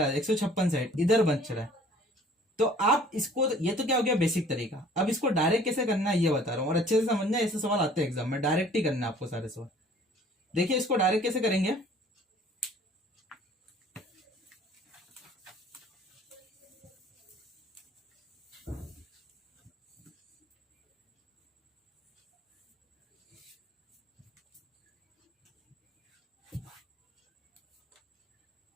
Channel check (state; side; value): normal; both; correlation 0.53